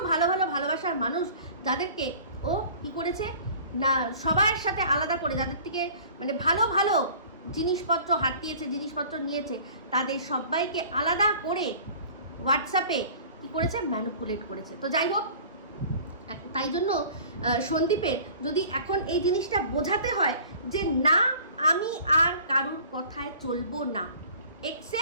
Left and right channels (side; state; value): both; inverted; correlation -0.46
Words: ভালোবাসার মানুষ, যাদেরকে ও কি করেছে না সবার সাথে আলাদা করে, যাদের থেকে মানে ভালো জিনিসপত্র হাতিয়েছে, জিনিসপত্র নিয়েছে, তাদের সবাইকে আলাদা করে হোয়াটসঅ্যাপে কি করেছে ম্যানিপুলেট করেছে। তো যাই হোক, তাই জন্য সন্দীপের যদি এখন এই জিনিসটা বোঝাতে হয় যে না আমি আর কারুর কথায় চলবো না,